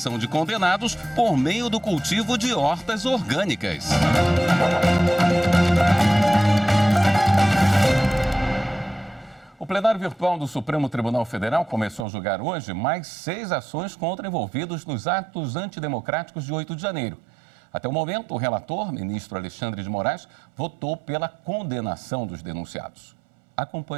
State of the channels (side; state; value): left; drops out; at 12.1 s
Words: de condenados por meio do cultivo de hortas orgânicas. O plenário virtual do Supremo Tribunal Federal começou a julgar hoje mais 6 ações contra envolvidos nos atos antidemocráticos de 8 de janeiro. Até o momento, o relator, ministro Alexandre de Moraes, votou pela condenação dos denunciados.